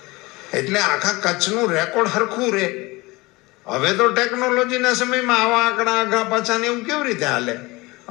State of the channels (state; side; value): quieter; right; 22.6 dB